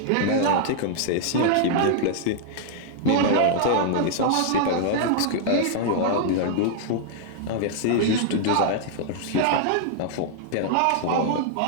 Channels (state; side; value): different; both; correlation -0.01